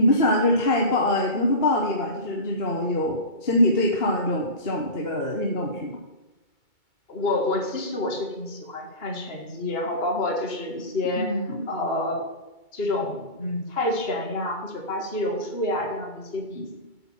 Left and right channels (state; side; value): late; right; 2.2 ms